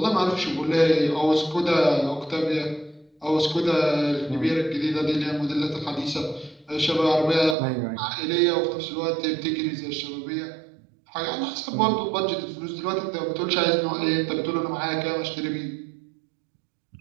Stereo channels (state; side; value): drops out; left; at 7.6 s